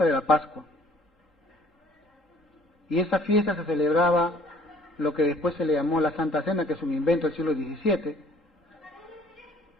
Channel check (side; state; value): both; normal; correlation 0.57